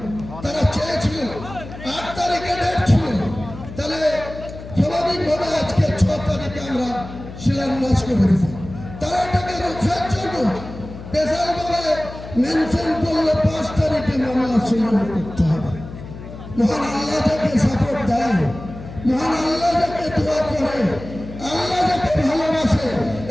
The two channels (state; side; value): noise; left; hum, 13 dB below the sound